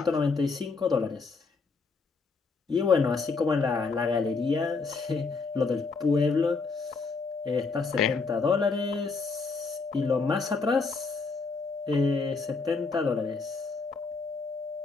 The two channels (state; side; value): quieter; right; 4.3 dB